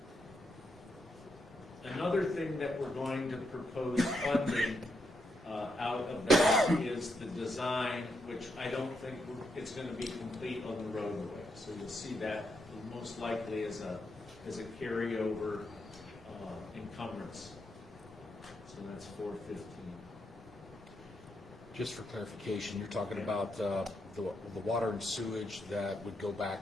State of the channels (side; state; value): both; normal; correlation 0.81